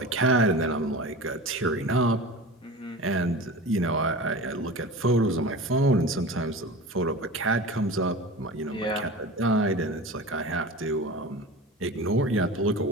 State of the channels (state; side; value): normal; both; correlation 0.32